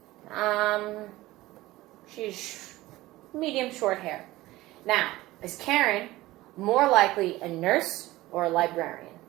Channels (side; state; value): left; quieter; 17.9 dB